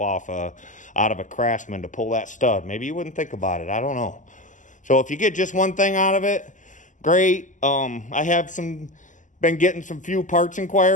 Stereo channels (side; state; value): right; late; 0.37 ms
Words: out of a Craftsman to pull that stud. Maybe you wouldn't think about it. I don't know. So if you get just one thing out of it, great. I have been getting some few parts